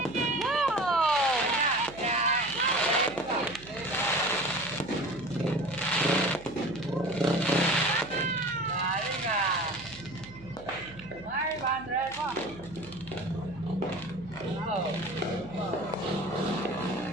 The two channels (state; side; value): noise; right; hum, 19 dB below the sound